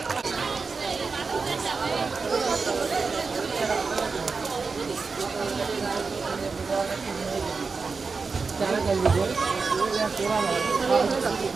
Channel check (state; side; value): quieter; left; 4.6 dB